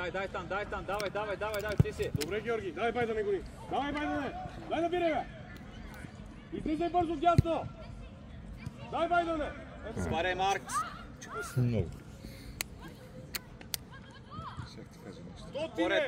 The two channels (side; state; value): both; identical; correlation 1.00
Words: давай, ти си. Добре, Георги, давай бай да не гони. Давай бай да не. Дай да бире, бе. Излизай бързо дясно. Дай бай да не. Спарай, Марк. Много. Поред